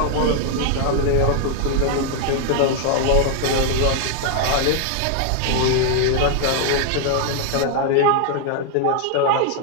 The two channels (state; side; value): different; both; correlation 0.00